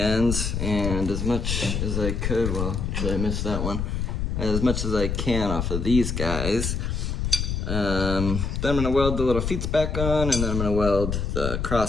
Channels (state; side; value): noise; left; rumble, 1 dB below the sound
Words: and as much as I could, well, actually I missed that one, as much as I can off of these guys. Then I'm gonna weld the little feet back on, and then I'm gonna weld the